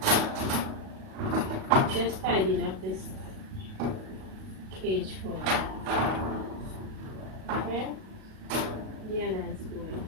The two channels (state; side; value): late; left; 37 ms